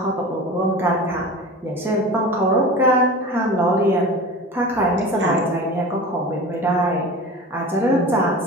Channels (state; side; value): normal; both; correlation 0.34